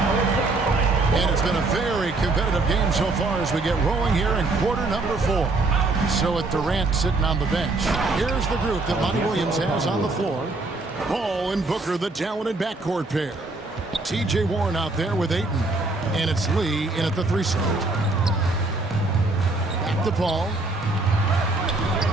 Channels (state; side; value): quieter; left; 3.2 dB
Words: And it's been a very competitive game so far as we get rolling here in quarter number 4. So with Durant sitting on the bench, here's the group that Monty Williams has on the floor. Paul and Booker, the talented backcourt pair. T.J. Warren out there with Ayton. And it's Lee in at the 3 slot. Back to Paul.